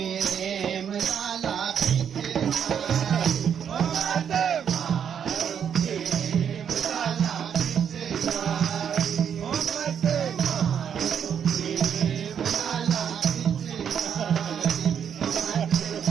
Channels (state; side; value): quieter; left; 8.1 dB